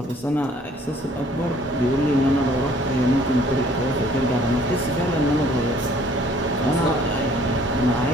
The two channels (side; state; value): both; normal; correlation 0.58